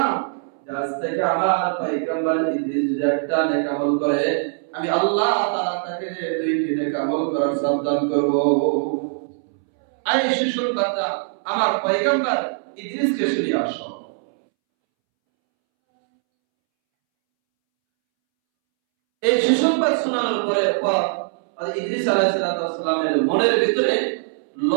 যে আজ থেকে আমার পয়গম্বর ইদ্রিস যদি একটা নেক আমল করে, আমি আল্লাহ তাআলা তাকে দুইটি নেক আমল করার সাবধান করব। এই সুসংবাদটা আমার পয়গম্বর ইদ্রিসকে শুনিয়ে আসো। এই সুসংবাদ শোনানোর পরে ইদ্রিস আলাইহিস সালামের মনের ভিতরে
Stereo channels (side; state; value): left; silent; 64 dB below the other